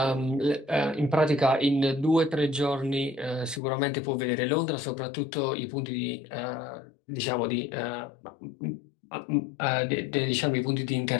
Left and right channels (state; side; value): drops out; right; at 3.6 s